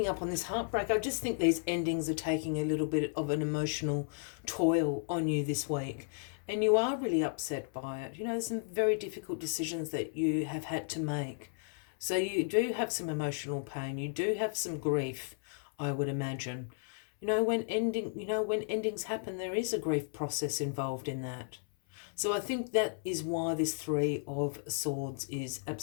up on this heartbreak. I just think these endings are taking a little bit of an emotional toil on you this week. And you are really upset by it. You know, there's some very difficult decisions that you have had to make. So you do have some emotional pain. You do have some grief, I would imagine. When endings happen, there is a grief process involved in that. So I think that is why this Three of Swords is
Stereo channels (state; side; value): silent; right; 55 dB below the other